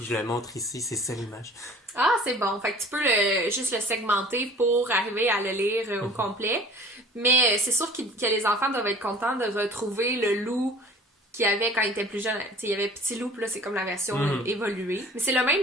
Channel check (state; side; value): normal; both; correlation 0.47